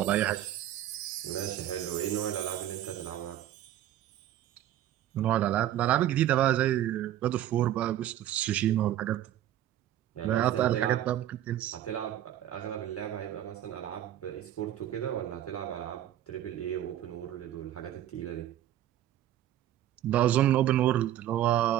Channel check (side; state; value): left; quieter; 12.3 dB